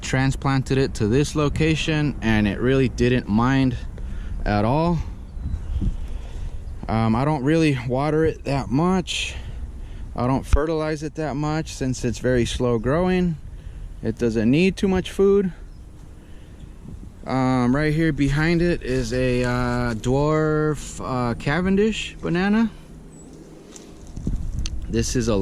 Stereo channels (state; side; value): identical; both; correlation 1.00